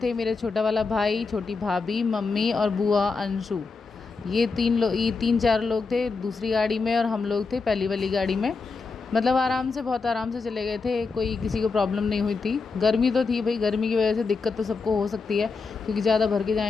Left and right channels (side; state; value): right; quieter; 4.4 dB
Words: मेरे छोटा वाला भाई, छोटी भाभी, मम्मी और बुआ अंशु। ये 3-4 लोग थे दूसरी गाड़ी में, और हम लोग थे पहली वाली गाड़ी में। मतलब बहुत आराम से चले गए थे, कोई किसी को प्रॉब्लम नहीं हुई थी। गर्मी तो थी भाई, गर्मी की वजह से दिक्कत तो सबको हो सकती है, क्योंकि ज़्यादा भर के